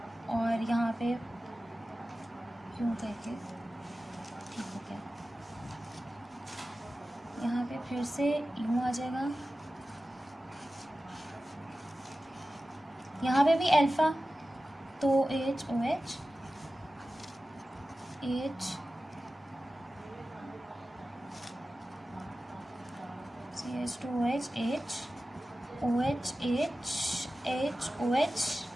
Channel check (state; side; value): normal; both; correlation 0.95